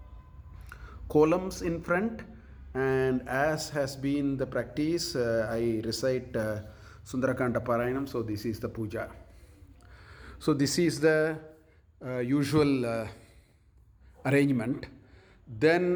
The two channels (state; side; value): identical; both; correlation 1.00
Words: columns in front, and as has been the practice, I recite Sundarakanda Parayanam, so this is the puja. So this is the usual arrangement.